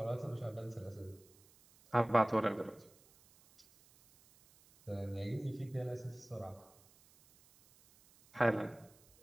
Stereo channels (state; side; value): noise; right; hiss, 27 dB below the sound